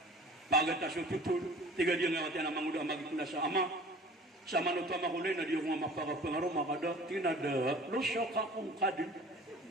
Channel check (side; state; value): both; normal; correlation 0.45